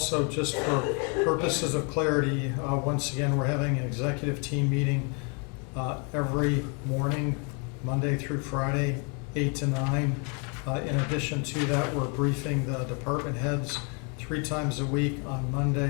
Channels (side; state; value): right; quieter; 35.8 dB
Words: just for purposes of clarity, once again, we're having an executive team meeting every morning, Monday through Friday, 8 to 9. In addition to that, we're briefing the department heads 3 times a week on